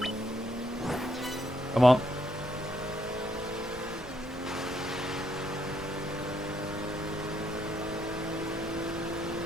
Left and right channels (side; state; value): both; normal; correlation 0.73